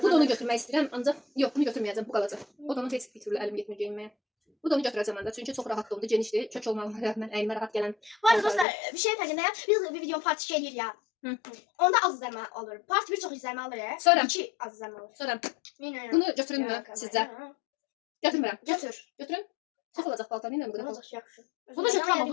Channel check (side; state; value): right; drops out; at 8.7 s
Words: Bu da onu götürmək istəyirəm, ancaq yox, bunu götürməyəcəm, bu qalacaq. O da onu heç bir türlü əlim getmir geyinməyə. Bu da onu götürəcəm ancaq, çünki çox rahat oldu, genişdir, kök olmağına rəğmən əynimə rahat gələn. Bu arada dostlar, bir şey fərqindəyəm. Biz bir video part 2 eləyirik ya. Onda az izlənmə alır. Part 1 çox izlənmə alır. Sonra 2 az izlənmə alır. Sonra bunu götürünmü sizcə? Götürmürəm. Götür. Götürün. Çox olacaq paltar, nə bu qədər? Olacaq yaxşı. Bunu götürəm,